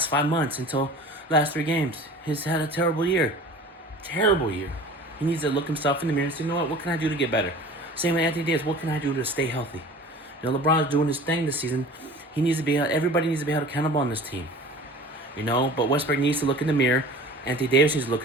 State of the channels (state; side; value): normal; both; correlation 0.42